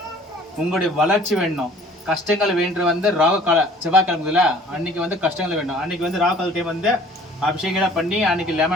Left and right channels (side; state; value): both; normal; correlation 0.52